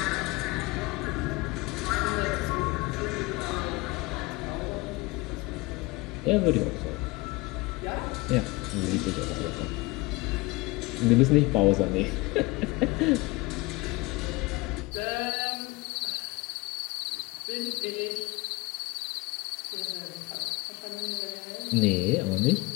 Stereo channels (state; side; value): quieter; right; 23.3 dB